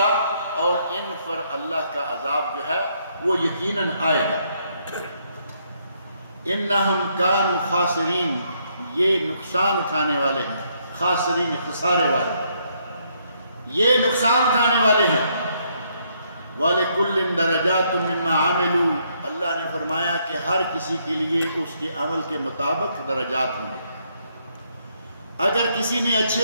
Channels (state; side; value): inverted; both; correlation -0.72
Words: اور ان پر اللہ کا عذاب جو ہے وہ یقیناً آئے گا۔ انہم کانوا خاسرین، یہ نقصان اٹھانے والے ہیں، خاسرین خسارے والے، یہ نقصان اٹھانے والے ہیں۔ وَلِكُلٍّ دَرَجَاتٌ مِّمَّا عَمِلُوا، اللہ نے فرمایا کہ ہر کسی کے لیے اس کے عمل کے مطابق درجات ہوں گے۔ اگر کسی نے